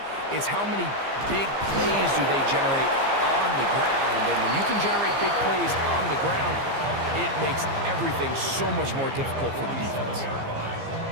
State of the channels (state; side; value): late; left; 15 ms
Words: it's how many big plays do they generate on the ground. And when you can generate big plays on the ground, it makes everything so much more difficult for the defense.